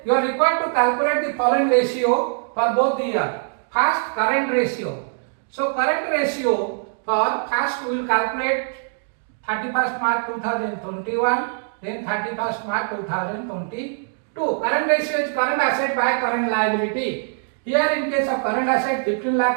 you are required to calculate the following ratio for both the year. First, current ratio. So current ratio for first we will calculate 31st March 2021, then 31st March 2022. Current ratio is current asset by current liability. Here in case of current asset 15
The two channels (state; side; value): silent; left; 64 dB below the other